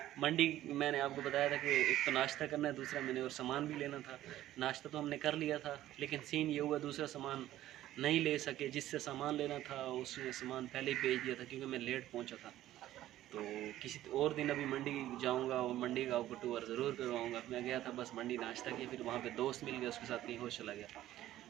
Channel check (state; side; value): quieter; left; 13.8 dB